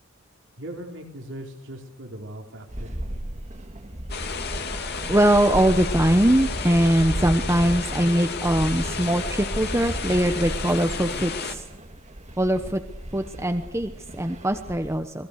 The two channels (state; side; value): normal; both; correlation 0.83